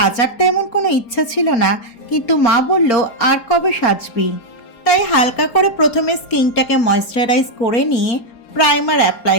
তেমন কোনো ইচ্ছা ছিল না, কিন্তু মা বলল আর কবে সাজবি। তাই হালকা করে প্রথমে স্কিনটাকে ময়েশ্চারাইজ করে নিয়ে প্রাইমার অ্যাপ্লাই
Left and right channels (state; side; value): late; right; 4.3 ms